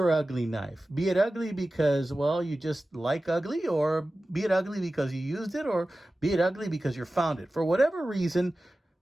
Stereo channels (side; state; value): both; normal; correlation 0.95